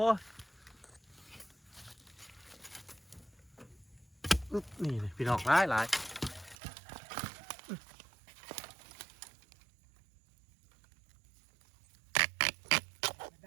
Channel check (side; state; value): left; drops out; at 6.6 s